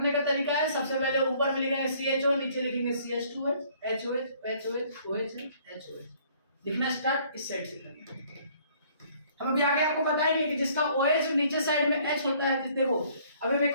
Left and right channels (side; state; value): both; inverted; correlation -0.60